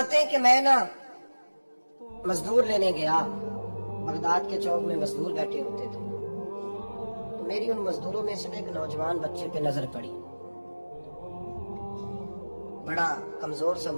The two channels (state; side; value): inverted; both; correlation -1.00